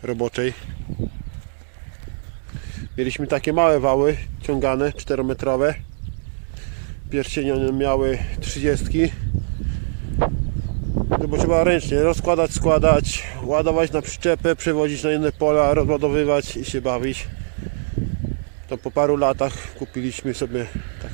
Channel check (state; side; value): silent; left; digital silence